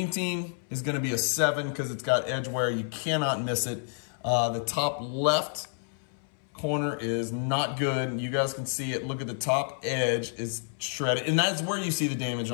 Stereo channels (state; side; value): silent; right; 58 dB below the other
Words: Team is going to be a 7 because it's got edge wear. You cannot miss it. The top left corner is not good. You guys can see it. Look at the top edge is shredded. And that's where you see the damage